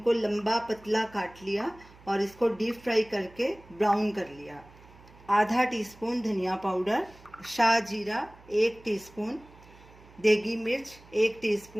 लंबा पतला काट लिया और इसको डीप फ्राई करके ब्राउन कर लिया। आधा टीस्पून धनिया पाउडर, शाह जीरा 1 टीस्पून, देगी मिर्च 1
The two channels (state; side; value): noise; right; hum, 24 dB below the sound